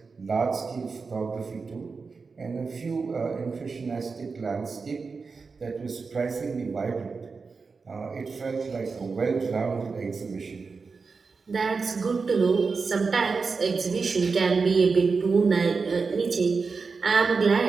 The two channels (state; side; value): quieter; left; 4.7 dB